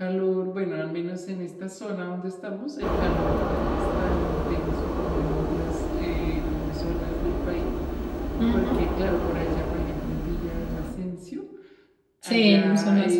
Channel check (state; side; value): identical; both; correlation 1.00